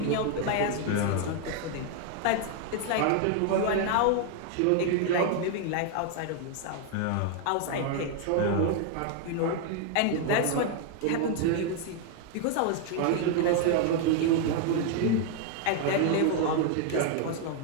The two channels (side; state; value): both; different; correlation 0.00